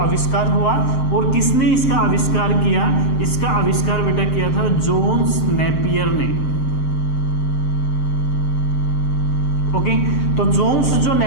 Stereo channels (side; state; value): right; late; 7.6 ms